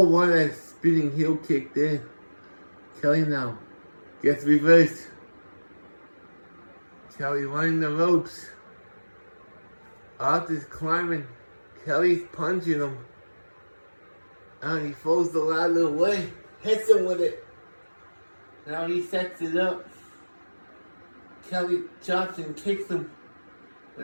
what a spinning heel kick there. Kelly now gets reversed. Kelly running the ropes. Arthur's climbing. Kelly's punching him. And he throws the ladder away. Hits him with it. Now he sets it up. Kelly chops and kicks him.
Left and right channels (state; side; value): inverted; both; correlation -1.00